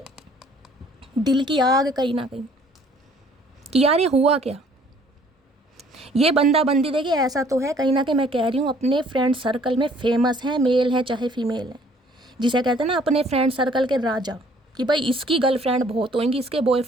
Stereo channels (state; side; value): normal; both; correlation 0.58